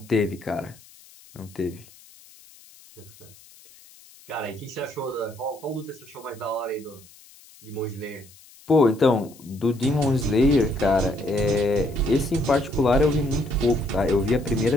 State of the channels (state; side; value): noise; left; hiss, 24 dB below the sound